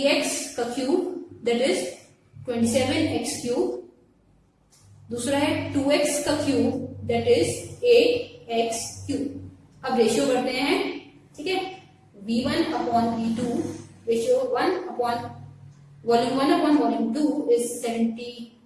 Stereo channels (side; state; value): both; identical; correlation 1.00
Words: का cube that is 27x cube, दूसरा है 2x का cube that is 8x cube. अब रेशियो करते हैं, ठीक है, V1 upon V2, ratio 1 upon volume 1 upon volume 2 is